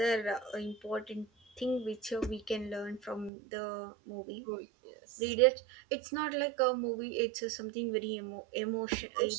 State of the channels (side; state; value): left; drops out; at 3.3 s